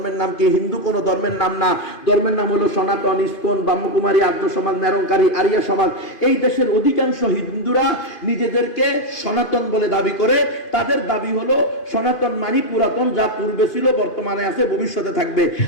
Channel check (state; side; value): late; right; 2.5 ms